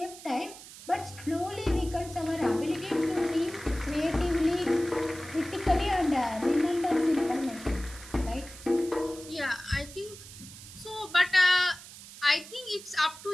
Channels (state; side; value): noise; right; hiss, 16 dB below the sound